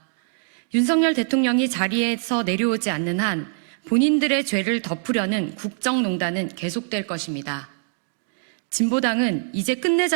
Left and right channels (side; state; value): left; silent; digital silence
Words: 윤석열 대통령이 자리에서 내려오지 않는 한 본인들의 죄를 덮으려는 국정농단은 계속될 것입니다. 진보당은 이제